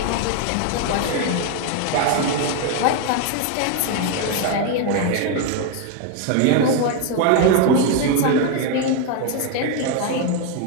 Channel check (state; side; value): different; both; correlation 0.01